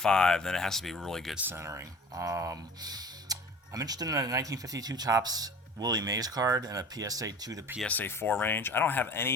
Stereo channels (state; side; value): normal; both; correlation 0.42